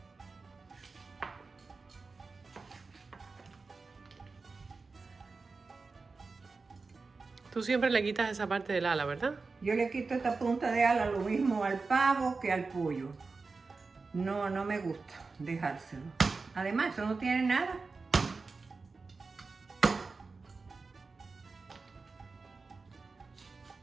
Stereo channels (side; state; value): left; quieter; 4.2 dB